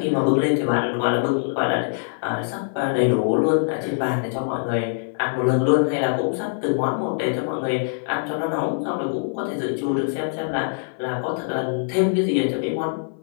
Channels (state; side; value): silent; right; 57 dB below the other